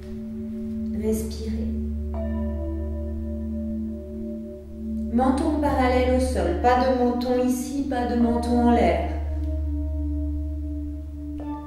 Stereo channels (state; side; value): identical; both; correlation 1.00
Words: Respirez. Menton parallèle au sol, pas de menton ici, pas de menton en l'air.